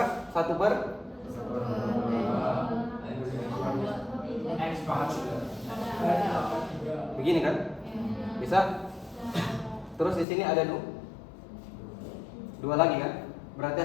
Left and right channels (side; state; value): right; drops out; at 10.2 s